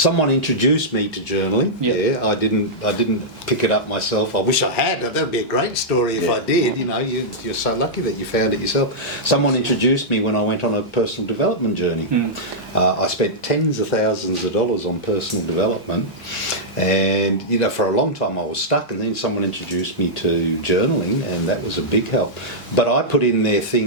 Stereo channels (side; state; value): both; normal; correlation -0.10